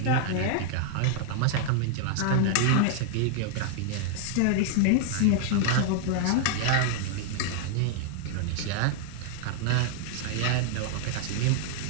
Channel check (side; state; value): both; different; correlation 0.00